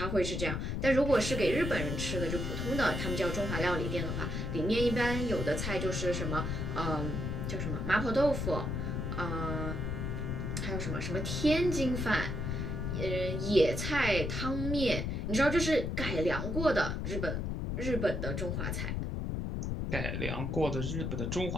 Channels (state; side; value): noise; left; rumble, 2 dB below the sound